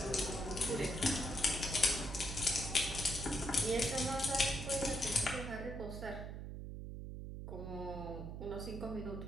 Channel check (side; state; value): right; noise; hum, 7 dB below the sound